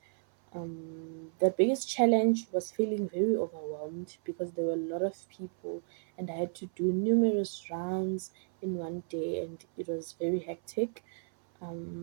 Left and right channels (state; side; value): silent; left; 56 dB below the other